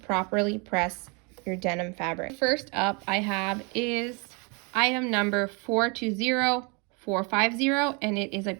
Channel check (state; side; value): quieter; left; 32.4 dB